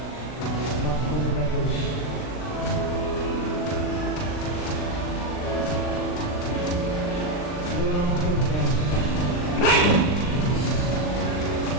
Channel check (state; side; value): late; right; 39 ms